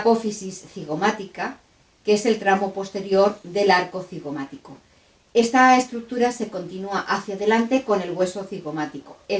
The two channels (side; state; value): both; identical; correlation 1.00